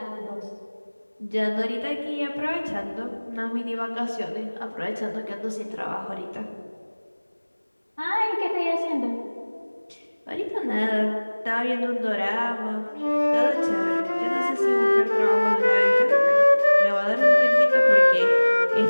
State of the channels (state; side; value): inverted; both; correlation -1.00